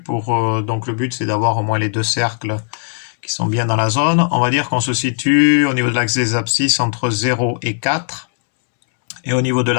donc le but c'est d'avoir au moins les deux cercles qui sont bien dans la zone. On va dire qu'on se situe au niveau de l'axe des abscisses entre 0 et 4 et au niveau de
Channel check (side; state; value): right; silent; digital silence